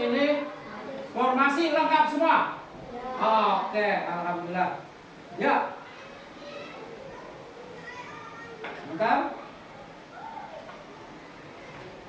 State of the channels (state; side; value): identical; both; correlation 1.00